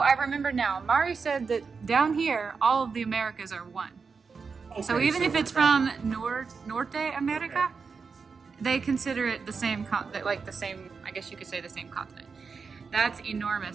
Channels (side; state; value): left; quieter; 5.2 dB